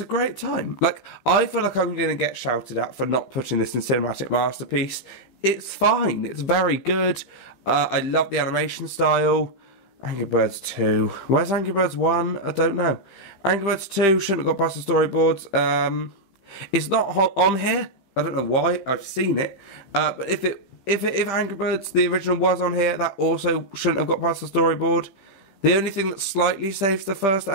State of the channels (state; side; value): late; right; 15 ms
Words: great time. Like, I feel like I'm going to get shouted at for not putting this in Cinematic Masterpiece. It's fine. It's very good. I love the animation style. Angry Birds 2. Where's Angry Birds 1? I don't know. Angry Birds 2 shouldn't have got past the storyboards. It's not on here. I don't know why. I've seen it. But if Angry Birds, the original, was on here, that also shouldn't have got past the storyboard. The only thing that slightly saves the first